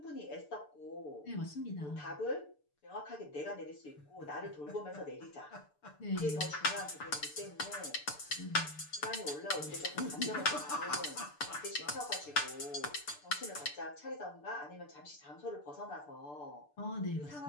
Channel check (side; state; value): right; late; 6.8 ms